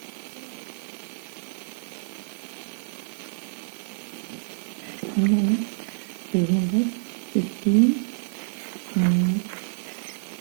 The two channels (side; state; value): left; silent; 60 dB below the other